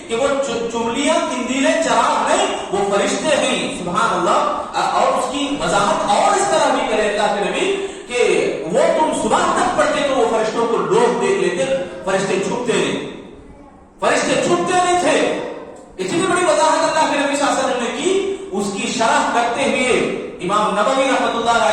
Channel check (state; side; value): identical; both; correlation 1.00